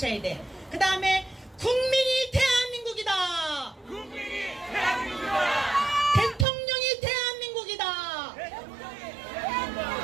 돼. 그 다음에 국민이 대한민국이다. 국민이 대한민국이다. 대통령이 대한민국이다. 대통령이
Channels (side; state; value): left; drops out; at 6.5 s